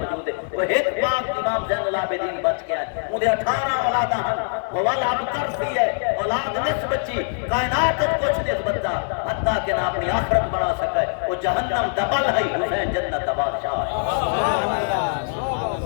ہے۔ وہ ایک پاک امام زین العابدین بچ کے آئے، انہیں 18 اولاداں ہیں، وہ والا اب ترسی ہے، اولاد نصف بچی، کائنات کچھ نسبت دا، حتیٰ کہ نہ اپنی آخرت بنا سکے، وہ جہنم دبل ہے، حسین جنت دا بادشاہ ہے۔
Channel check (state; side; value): silent; right; digital silence